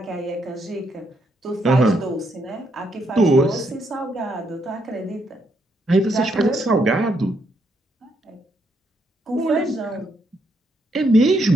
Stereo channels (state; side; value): normal; both; correlation 0.76